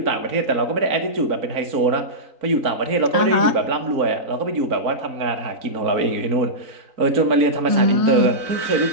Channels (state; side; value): late; left; 3.9 ms